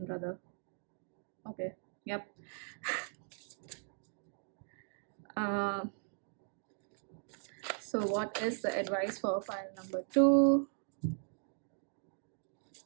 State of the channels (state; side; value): silent; left; 52 dB below the other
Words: brother. Okay, yep. So, what is the advice for file number 2?